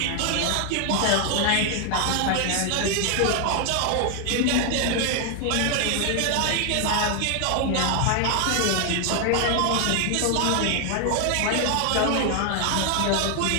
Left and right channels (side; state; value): both; different; correlation 0.00